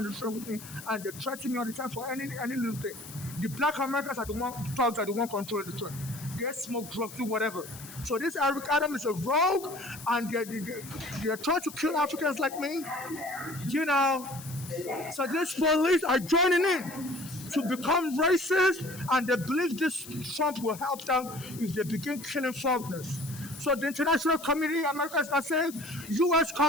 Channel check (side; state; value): left; noise; hiss, 15 dB below the sound